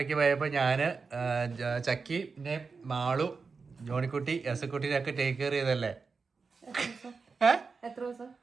പോയപ്പോൾ ഞാൻ ചക്കി പിന്നെ മാളു ജോണിക്കുട്ടി എസക്കുട്ടിനൊക്കെ ടേക്ക് കെയർ ചെയ്തല്ലേ.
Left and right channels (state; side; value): quieter; left; 4.8 dB